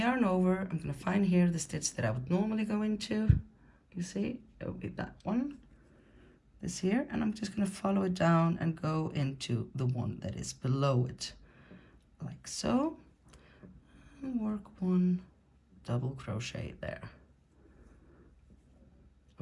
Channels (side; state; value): both; identical; correlation 1.00